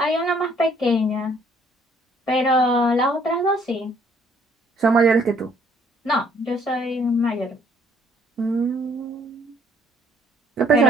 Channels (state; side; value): normal; both; correlation 0.63